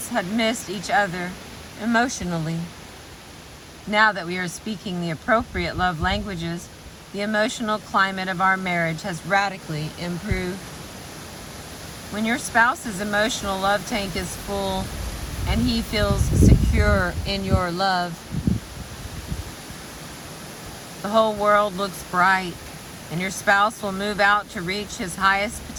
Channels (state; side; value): identical; both; correlation 1.00